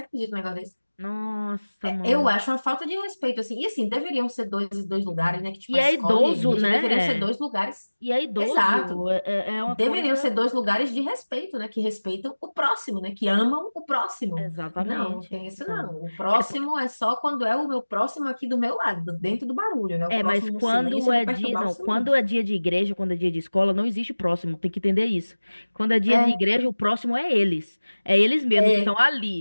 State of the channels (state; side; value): inverted; both; correlation -1.00